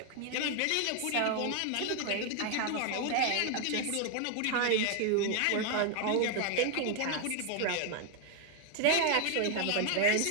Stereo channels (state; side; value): different; both; correlation 0.00